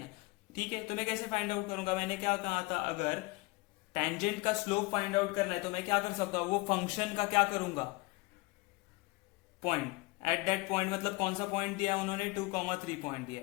ठीक है, तो मैं कैसे फाइंड आउट करूंगा? मैंने क्या कहा था, अगर टेंजेंट का स्लोप फाइंड आउट करना है तो मैं क्या कर सकता हूं? वो फंक्शन का क्या करूंगा? पॉइंट, एट दैट पॉइंट, मतलब कौन सा पॉइंट दिया है उन्होंने? 2,3 पॉइंट दिया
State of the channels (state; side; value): quieter; right; 23.3 dB